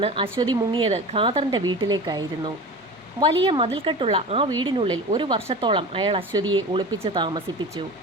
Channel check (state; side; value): normal; both; correlation 0.33